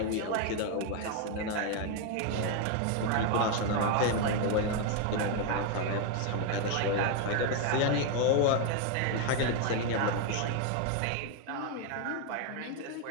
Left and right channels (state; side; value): different; both; correlation 0.01